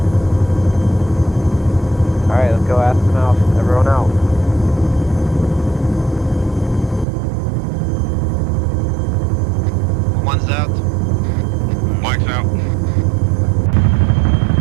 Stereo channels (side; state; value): left; drops out; at 7.1 s